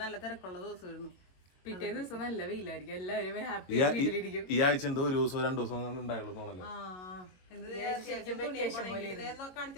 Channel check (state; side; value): late; right; 22 ms